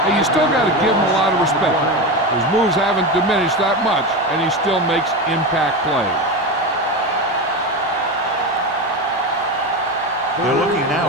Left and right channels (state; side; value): normal; both; correlation 0.20